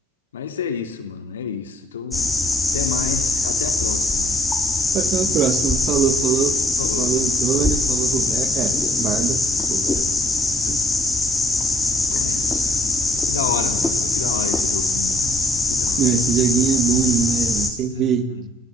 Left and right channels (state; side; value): normal; both; correlation 0.64